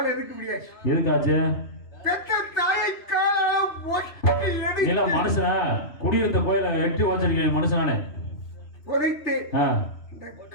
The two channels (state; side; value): late; right; 3.2 ms